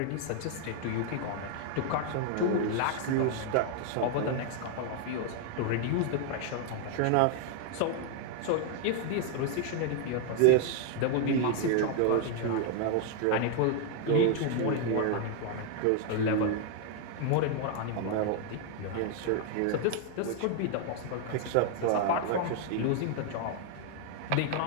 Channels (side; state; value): both; different; correlation 0.00